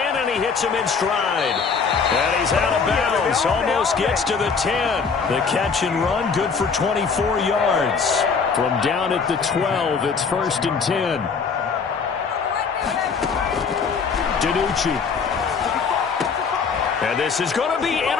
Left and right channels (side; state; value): right; quieter; 5.5 dB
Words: and he hits him in stride. And he's out of bounds, almost gets to the 10. The catch and run, good for 24 yards. From down at the 12, it's 1st and 10. DiNucci. And this is going to be